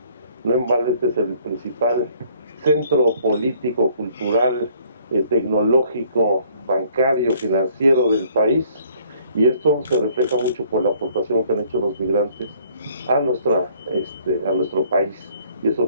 No en balde este es el principal centro político, cultural, tecnológico, bancario, financiero del país, y esto se refleja mucho por la aportación que han hecho los migrantes a nuestro país, y eso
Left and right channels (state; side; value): inverted; both; correlation -0.61